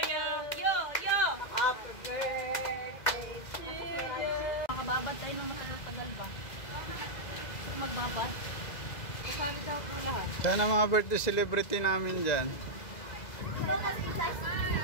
Yo! Happy birthday to you! Makababad tayo ng matagal ba? Kung magbabad? Kasali daw po lahat. Sana mga birthday celebrity namin dyan.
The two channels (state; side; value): late; right; 2.0 ms